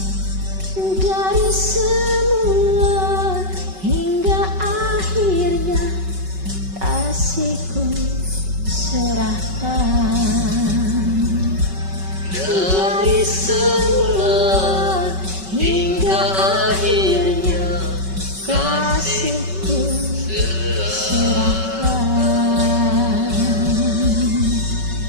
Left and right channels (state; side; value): late; left; 5.3 ms